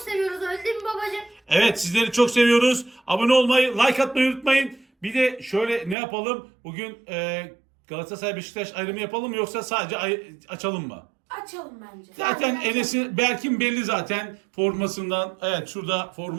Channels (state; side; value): drops out; left; at 6.0 s